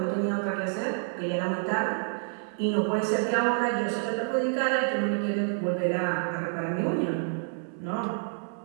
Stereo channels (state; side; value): silent; left; 59 dB below the other